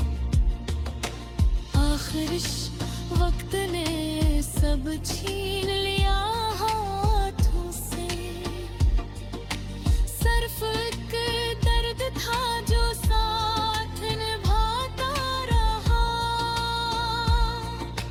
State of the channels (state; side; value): identical; both; correlation 1.00